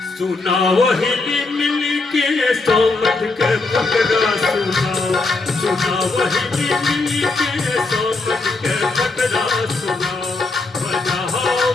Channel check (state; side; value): quieter; right; 3.5 dB